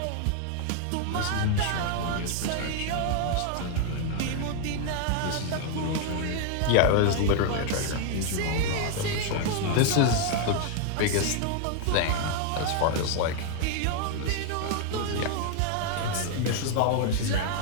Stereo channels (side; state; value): both; different; correlation 0.00